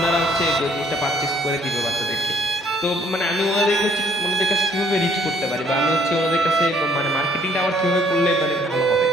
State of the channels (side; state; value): both; normal; correlation 0.63